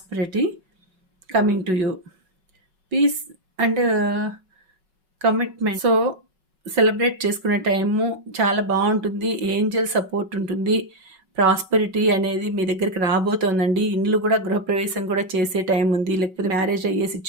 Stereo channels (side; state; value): left; late; 5.4 ms